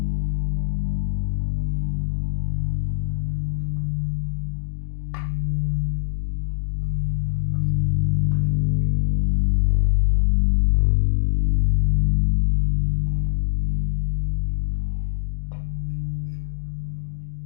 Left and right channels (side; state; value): right; silent; digital silence